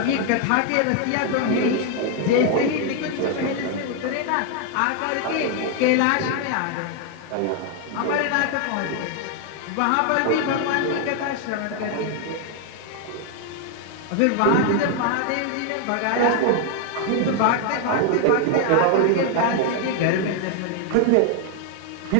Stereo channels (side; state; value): both; different; correlation 0.00